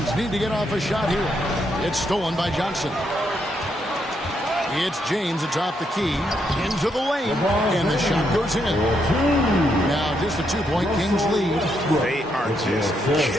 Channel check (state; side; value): normal; both; correlation 0.77